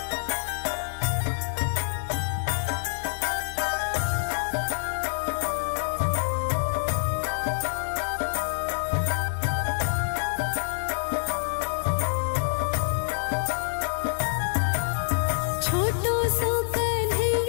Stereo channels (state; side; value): silent; right; digital silence